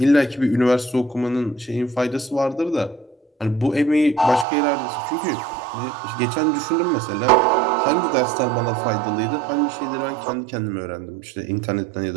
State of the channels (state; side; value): drops out; left; at 4.5 s